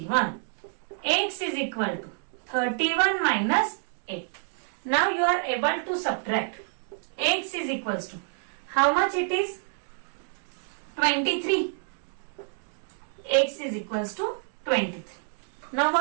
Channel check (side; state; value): left; silent; digital silence